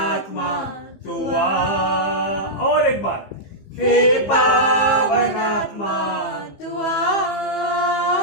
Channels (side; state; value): right; late; 15 ms